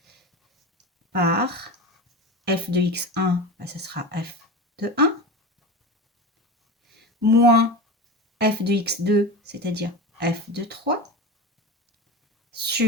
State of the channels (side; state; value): both; normal; correlation 0.26